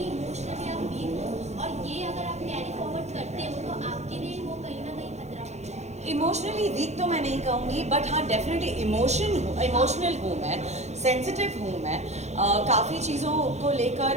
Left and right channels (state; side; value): late; left; 0.33 ms